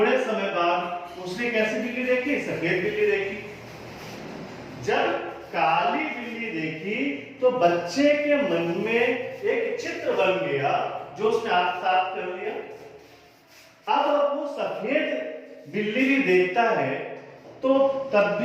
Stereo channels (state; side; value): identical; both; correlation 1.00